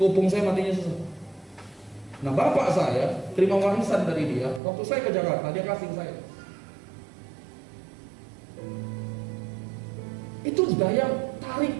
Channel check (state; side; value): drops out; left; at 4.6 s